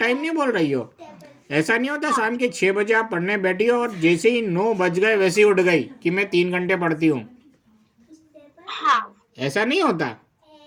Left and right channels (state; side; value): identical; both; correlation 1.00